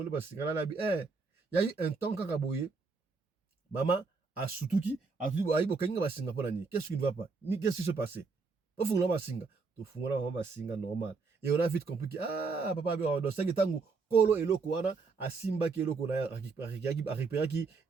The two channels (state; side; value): quieter; left; 4.5 dB